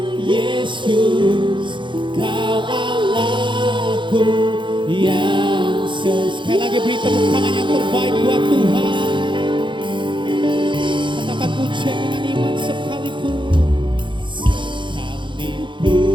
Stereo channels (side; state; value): left; late; 0.23 ms